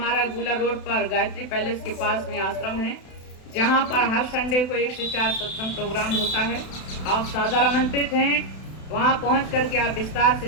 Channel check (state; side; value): late; right; 32 ms